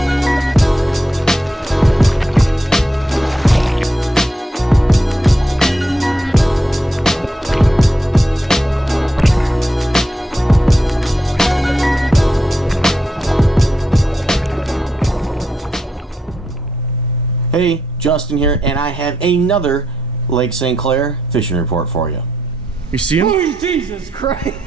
Hey, Justin here, and I have another Lake St. Clair fishing report for you. You see him? Oh, Jesus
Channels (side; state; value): both; normal; correlation 0.81